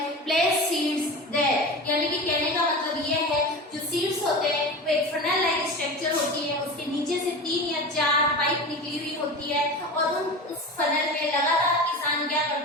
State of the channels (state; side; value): normal; both; correlation 0.30